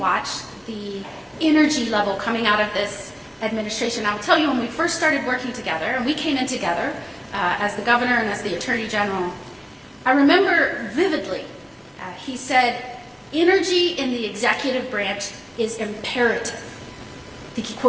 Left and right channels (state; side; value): identical; both; correlation 1.00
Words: the energy level coming out of this administration. I will tell you, when we first started working together, and we came in together as the governor and as the attorney general, I remember vividly, he said, energy in the executive branch is imperative. I think he